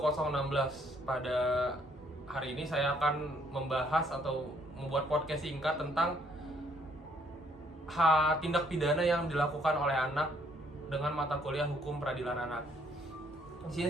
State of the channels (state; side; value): normal; both; correlation 0.66